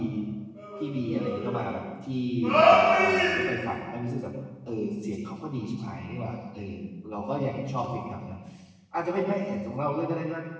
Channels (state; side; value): identical; both; correlation 1.00